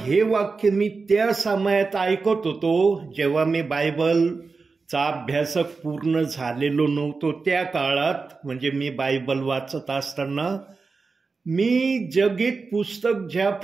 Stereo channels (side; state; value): left; quieter; 4.4 dB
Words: वाक्य मी त्या समयात ऐकत होतो, जेव्हा मी बायबलचा अभ्यासक पूर्ण झालेलो नव्हतो त्या काळात, म्हणजे मी बायबल वाचत असताना मी जगीत पुस्तक